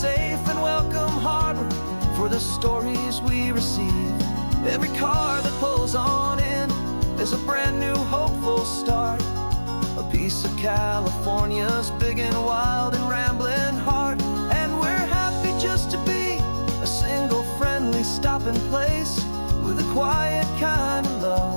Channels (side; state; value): both; inverted; correlation -1.00